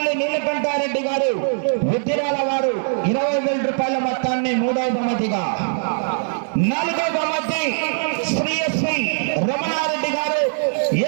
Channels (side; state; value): left; silent; digital silence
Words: నీలకంఠారెడ్డి గారు, ఉద్దిరాల వారు 20,000 రూపాయల మొత్తాన్ని మూడవ బహుమతిగా, నాలుగవ బహుమతి శ్రీ ఎస్వి రమణారెడ్డి గారు,